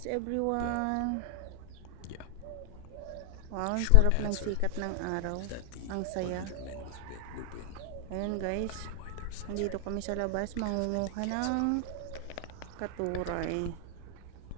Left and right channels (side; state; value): both; different; correlation 0.00